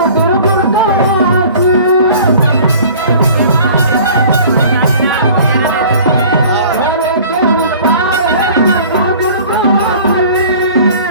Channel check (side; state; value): both; inverted; correlation -0.47